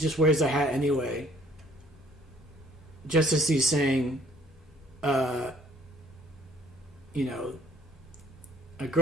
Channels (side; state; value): both; normal; correlation 0.59